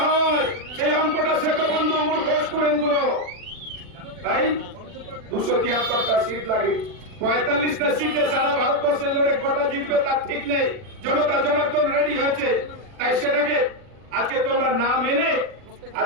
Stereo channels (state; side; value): late; left; 40 ms